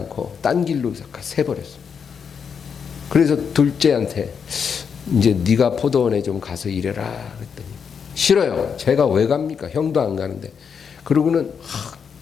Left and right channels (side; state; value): right; quieter; 6.6 dB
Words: 딴 길로 새버렸어요. 그래서 둘째한테 이제 네가 포도원에 좀 가서 일해라 그랬더니 싫어요. 제가 왜 갑니까? 형도 안 가는데. 그러고는